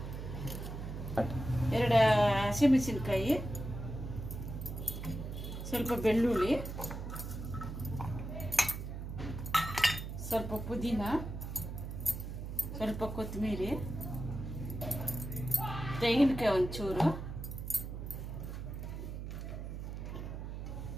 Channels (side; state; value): right; noise; hum, 7 dB below the sound